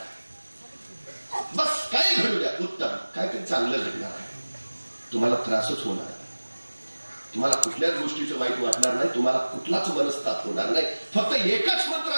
बस काय घडू द्या, उत्तम, काहीतरी चांगलं घडणार आहे. तुम्हाला त्रासच होणार आहे, तुम्हाला कुठल्याच गोष्टीचं वाईट वाटणार नाही, तुम्हाला कुठलाच मनस्ताप होणार नाही. फक्त एकच मंत्र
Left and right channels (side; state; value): both; inverted; correlation -1.00